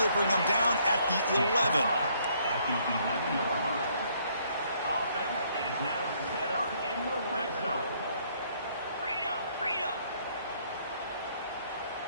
bring him down at the 11.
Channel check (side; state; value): both; inverted; correlation -0.67